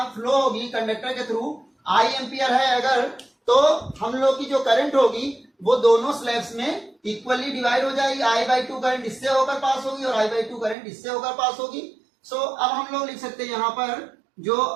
फ्लो होगी कंडक्टर के थ्रू आई एम्पियर है अगर, तो हम लोग की जो करंट होगी वो दोनों स्लैब्स में इक्वली डिवाइड हो जाएगी। I/2 करंट इससे होकर पास होगी और I/2 करंट इससे होकर पास होगी। सो अब हम लोग लिख सकते हैं यहाँ पर जो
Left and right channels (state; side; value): drops out; left; at 10.8 s